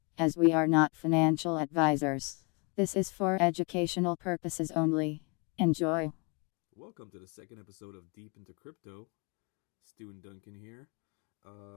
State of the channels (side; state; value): right; quieter; 31.8 dB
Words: as we are not financial advisors. This is for educational purposes only. Enjoy. Welcome to the second episode of Deep into Crypto. Stu and Duncan here.